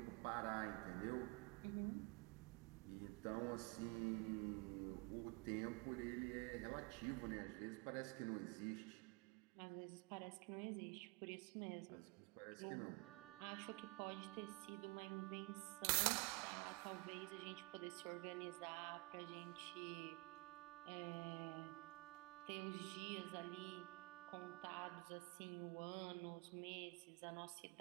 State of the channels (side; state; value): left; quieter; 26.3 dB